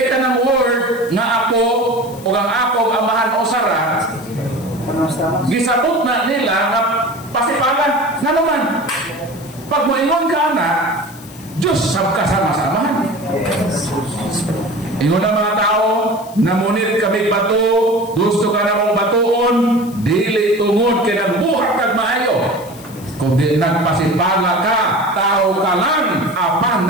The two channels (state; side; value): noise; left; hiss, 20 dB below the sound